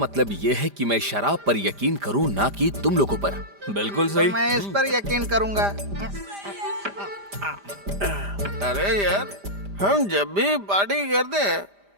ये है कि मैं शराब पर यकीन करूं, ना कि तुम लोगों पर? बिल्कुल सही। मैं इस पर यकीन करूंगा। अरे यार, हम जब भी पार्टी करते हैं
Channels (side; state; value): left; late; 5.0 ms